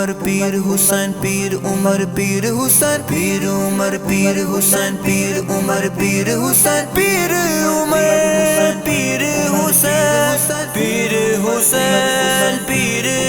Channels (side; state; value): both; identical; correlation 1.00